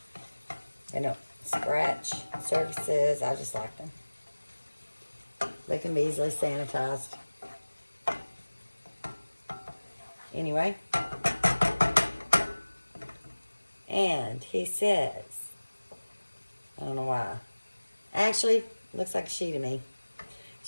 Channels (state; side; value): inverted; both; correlation -1.00